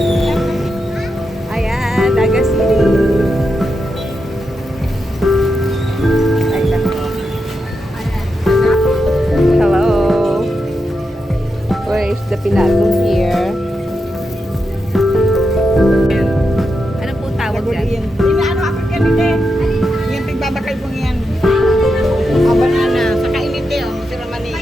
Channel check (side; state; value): both; normal; correlation 0.86